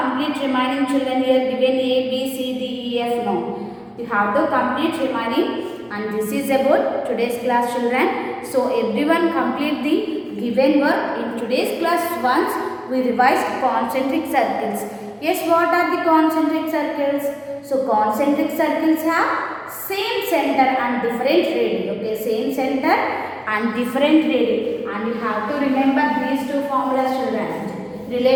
remaining, children. Here given A, B, C, D, E, F. No. You have to complete remaining, and this is about today's class, children. So everyone complete the given work in today's class. Once we revised concentric circles. Yes, what are the concentric circles? So concentric circles have same center and different radii. Okay, same center and different radii. And you have to remember these two formulas, children.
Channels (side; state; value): both; identical; correlation 1.00